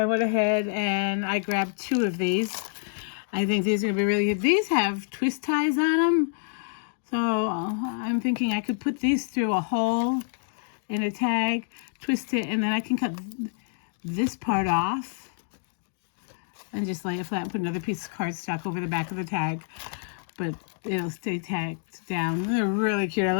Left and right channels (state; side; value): silent; right; digital silence